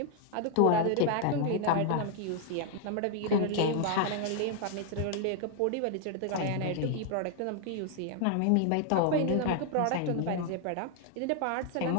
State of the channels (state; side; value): different; both; correlation 0.00